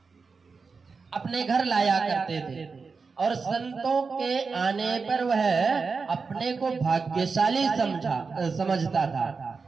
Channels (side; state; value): left; quieter; 4.8 dB